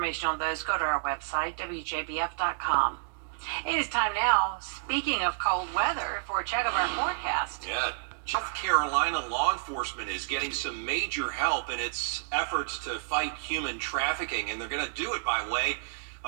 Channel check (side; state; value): left; silent; 58 dB below the other